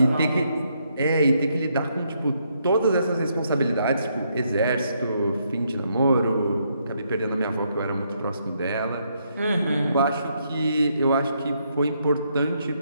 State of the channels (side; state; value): both; inverted; correlation -0.75